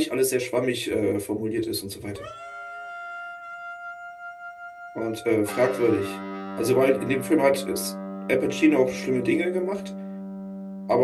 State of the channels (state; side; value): identical; both; correlation 1.00